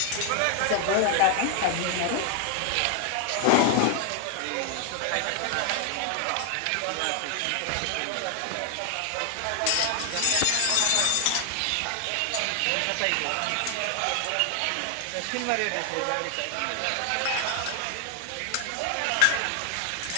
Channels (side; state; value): both; different; correlation 0.00